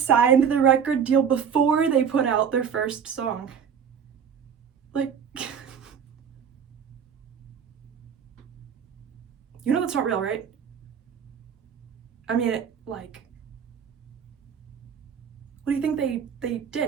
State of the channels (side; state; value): left; quieter; 7.3 dB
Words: the record deal before they put out their first song? Like, you know that's not real, right? I mean, like, what do you think they